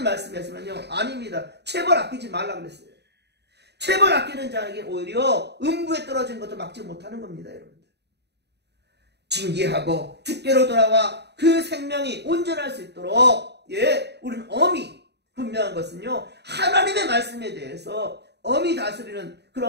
말씀에서는요, 아닙니다. 체벌 아끼지 말라 그랬어요. 체벌 아끼는 자에게 오히려 음부에 떨어진 것도 막지 못하는 겁니다, 여러분들. 징계하고 주께로 돌아와 그 생명이 온전할 수 있도록, 우리는 엄히 분명한 것은요, 하나님의 말씀에 대해서 엄히 다스리는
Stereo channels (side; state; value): left; late; 0.49 ms